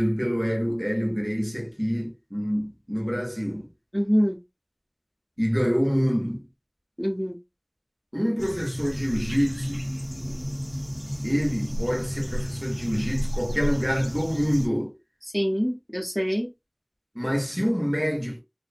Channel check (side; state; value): both; identical; correlation 1.00